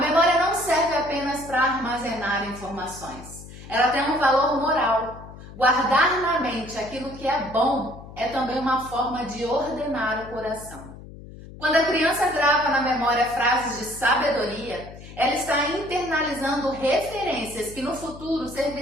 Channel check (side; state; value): left; noise; hum, 16 dB below the sound